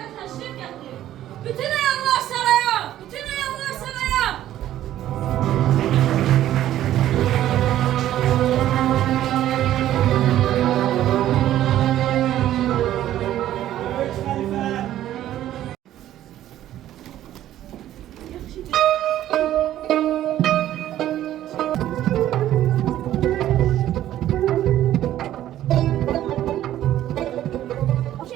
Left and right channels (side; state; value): left; quieter; 12.7 dB